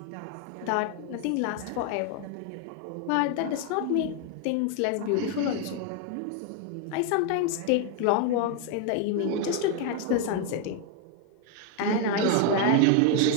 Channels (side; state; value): both; different; correlation 0.01